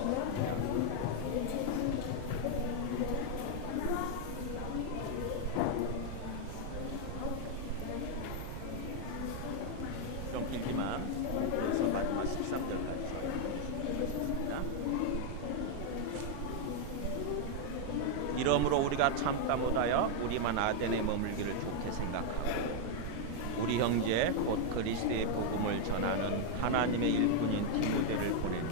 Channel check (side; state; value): both; different; correlation 0.00